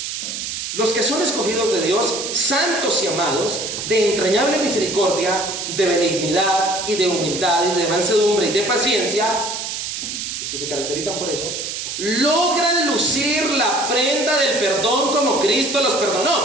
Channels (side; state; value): right; noise; hiss, 5 dB below the sound